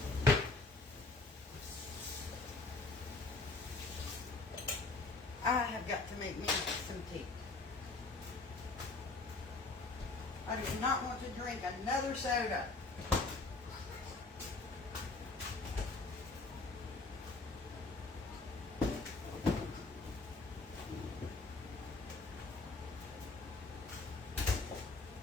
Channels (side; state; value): right; quieter; 3.5 dB